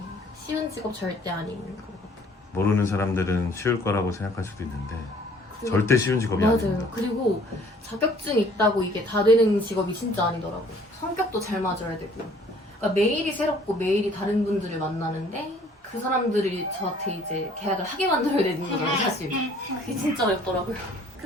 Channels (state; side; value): normal; both; correlation 0.56